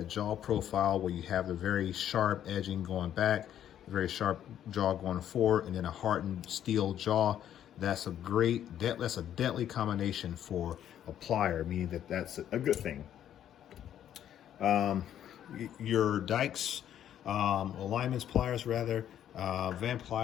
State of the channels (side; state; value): right; quieter; 10.6 dB